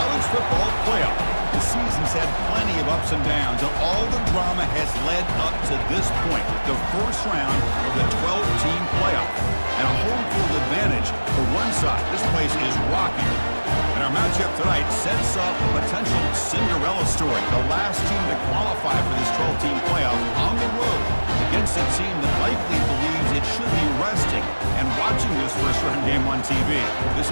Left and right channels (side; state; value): both; inverted; correlation -1.00